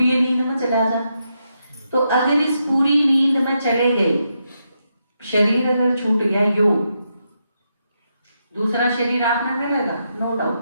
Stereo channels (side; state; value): both; inverted; correlation -0.83